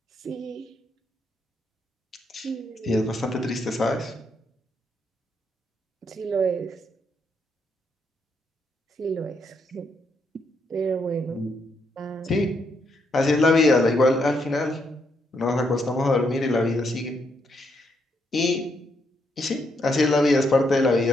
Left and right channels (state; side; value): normal; both; correlation 0.77